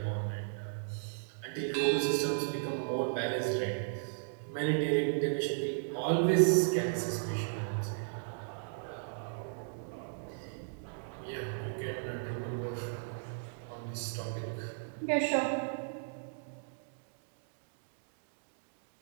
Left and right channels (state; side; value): silent; left; digital silence